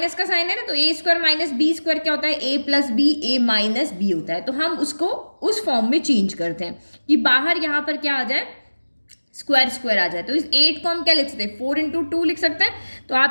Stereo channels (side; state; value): both; inverted; correlation -1.00